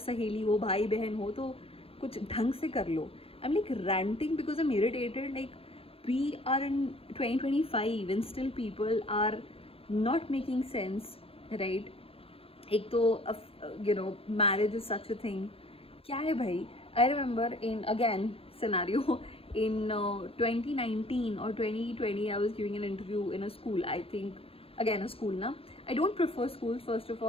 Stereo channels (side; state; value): right; late; 0.27 ms